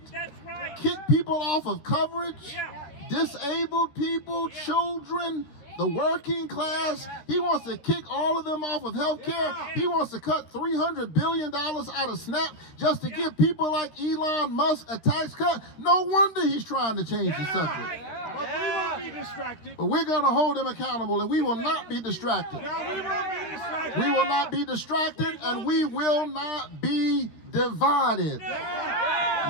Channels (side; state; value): right; late; 13 ms